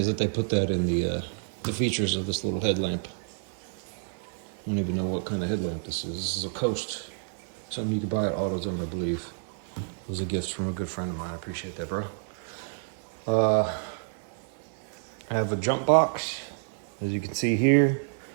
that they put that in the features of this little headlamp. I don't even know what kind of headlamp this is. This is a Coast. Something you could buy at AutoZone, I believe. It was a gift from a good friend of mine. I appreciate that, bro. I have a jump box, as you can see here.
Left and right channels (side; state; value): left; silent; 57 dB below the other